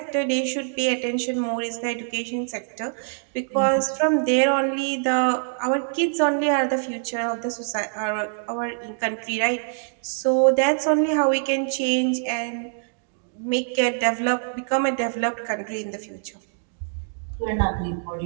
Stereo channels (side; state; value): left; silent; 62 dB below the other